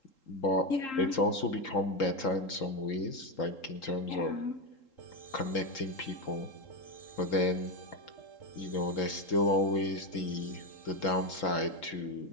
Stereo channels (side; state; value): right; late; 3.8 ms